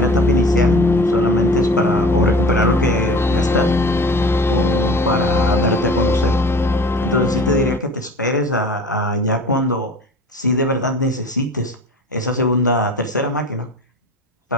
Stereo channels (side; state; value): both; normal; correlation 0.42